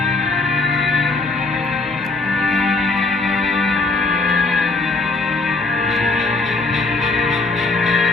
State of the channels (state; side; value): quieter; right; 3.5 dB